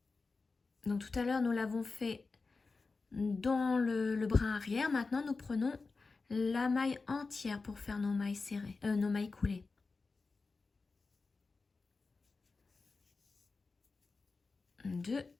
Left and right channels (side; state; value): right; quieter; 4.1 dB